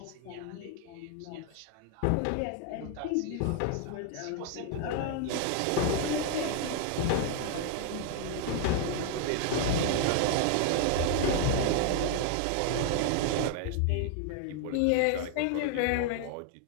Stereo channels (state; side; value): different; both; correlation 0.00